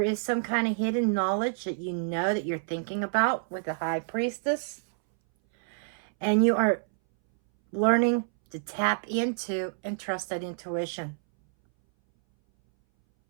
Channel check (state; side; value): silent; left; 59 dB below the other